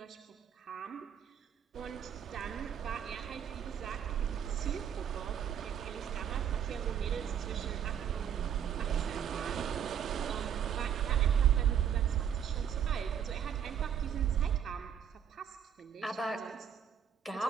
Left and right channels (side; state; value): left; quieter; 8.7 dB